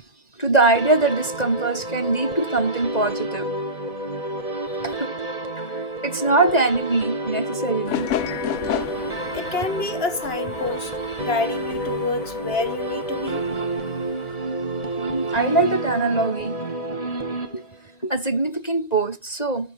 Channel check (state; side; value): late; right; 1.9 ms